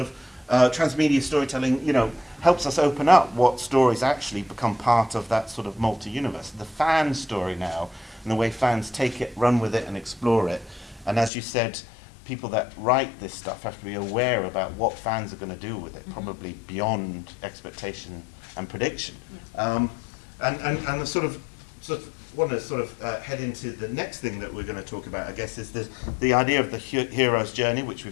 transmedia storytelling, you know, helps us open up what stories actually become part of that sort of multi-universe. The fan story now, and the way fans take it, run with it, and explore it. And as you said, people that write this stuff have to be aware about what fans are going to do with it, probably beyond expectation and prediction. And the sort of want to sort of head into the next thing that we're going to talk about, I guess, is the idea of the hero's journey, which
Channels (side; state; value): right; drops out; at 11.3 s